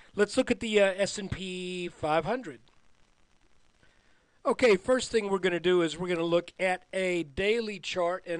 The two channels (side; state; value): both; identical; correlation 1.00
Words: Let's look at the S&P 500. Okay, first thing we're going to do is we're going to look at a daily chart,